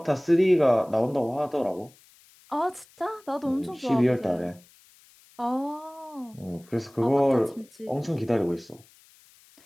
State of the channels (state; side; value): noise; left; hiss, 28 dB below the sound